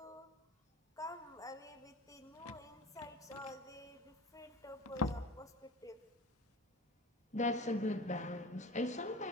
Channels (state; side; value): normal; both; correlation 0.36